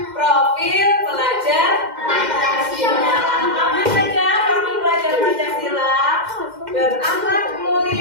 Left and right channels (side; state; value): left; late; 2.1 ms